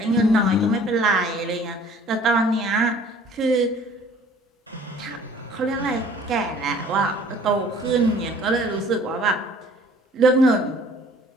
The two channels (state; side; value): normal; both; correlation 0.53